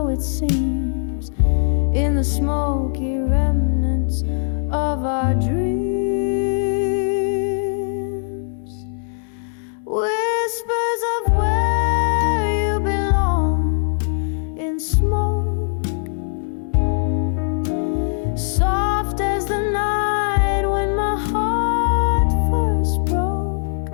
it seems, in the smoky remnants of our dreams. Whispers of where you belong in smoke, soft as the night when my heart first broke.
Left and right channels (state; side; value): silent; right; digital silence